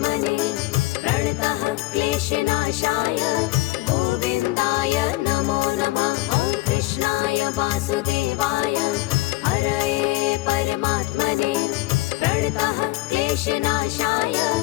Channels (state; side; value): quieter; right; 19.6 dB